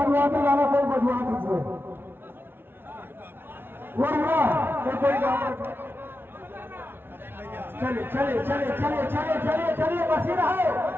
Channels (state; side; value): late; left; 0.11 ms